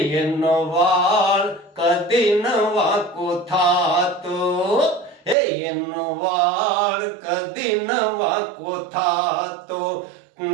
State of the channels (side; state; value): left; drops out; at 5.4 s